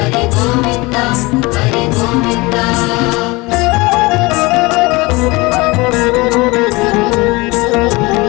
గోవింద హరి గోవింద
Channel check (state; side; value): quieter; right; 23.6 dB